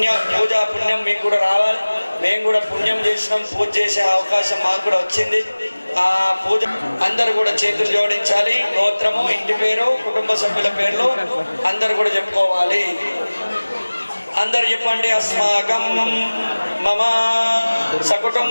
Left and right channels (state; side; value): inverted; both; correlation -1.00